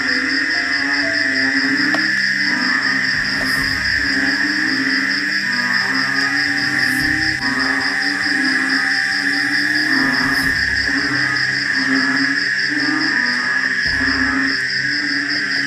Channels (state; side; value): identical; both; correlation 1.00